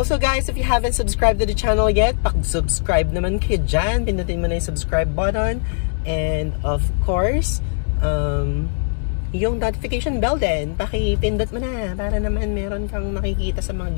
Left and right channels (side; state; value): right; silent; digital silence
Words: guys, if you haven't subscribed to the channel yet, pag-subscribe naman kayo dyan. Pindutin mo na yung subscribe button. And of course, yung notification bell din, pakipindot mo na para naman meron kang makikita sa mga